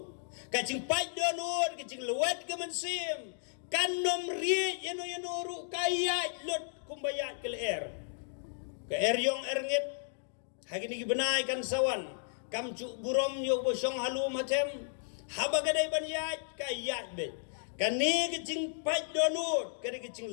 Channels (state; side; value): silent; right; digital silence